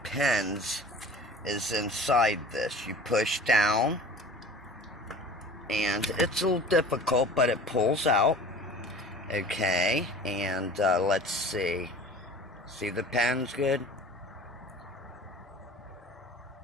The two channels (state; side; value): normal; both; correlation 0.42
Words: pins is inside this. You push down, and it's a little difficult, but it pulls out. Okay, and let's see. See the pins good?